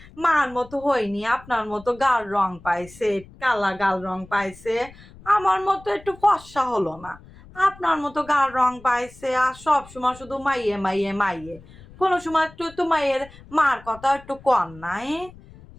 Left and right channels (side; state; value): left; noise; rumble, 21 dB below the sound